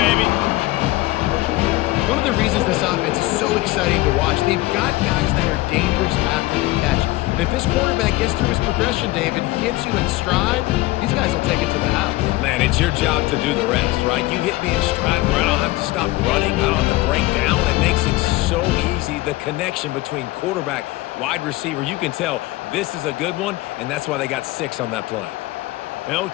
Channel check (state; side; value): quieter; right; 19.2 dB